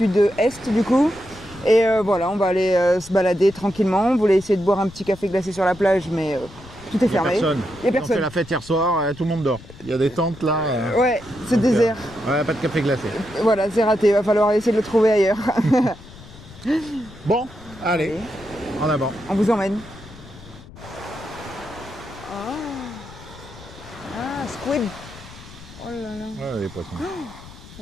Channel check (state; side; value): noise; left; rumble, 19 dB below the sound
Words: du coup. Et voilà, on va aller se balader tranquillement. On voulait essayer de boire un petit café glacé sur la plage, mais tout est fermé. Il n'y a personne. On fait la fête hier soir, tout le monde dort. Il y a des tentes là. Ouais, c'est désert. Ouais, pas de café glacé. Voilà, c'est raté, il va falloir essayer de le trouver ailleurs. Bon, allez, en avant. On vous emmène. Squid. Oh là là. Ouais, les poissons.